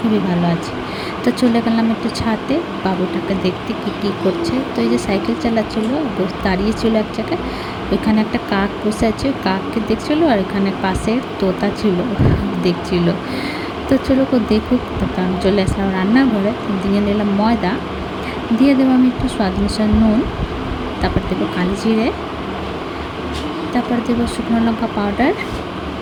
ভালো আছি। তো চলে গেলাম একটু ছাদে বাবুটাকে দেখতে কি করছে। তো এই যে সাইকেল চালাচ্ছিলো, দাঁড়িয়েছিল এক জায়গায়, ওইখানে একটা কাক বসে আছে, ওই কাককে দেখছিলো, আর এখানে পাশে তোতা ছিল দেখছিল। তো চলো দেখুক। তারপর আমি চলে আসলাম রান্নাঘরে, দিয়ে নিলাম ময়দা, দিয়ে দেবো আমি একটু স্বাদ অনুসারে নুন, তারপর দেবো কালি জিরে, তারপর দেবো শুকনো লঙ্কা পাউডার,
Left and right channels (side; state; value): both; identical; correlation 1.00